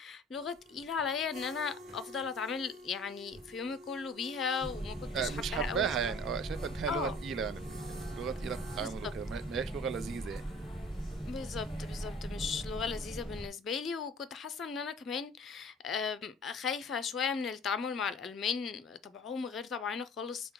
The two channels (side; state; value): both; normal; correlation 0.49